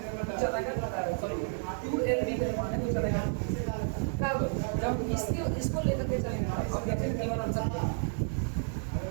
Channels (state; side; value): silent; left; 57 dB below the other